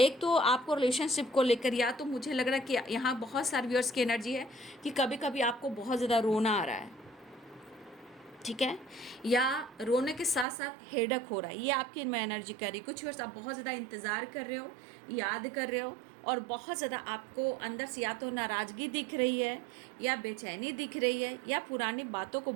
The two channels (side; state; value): left; drops out; at 10.5 s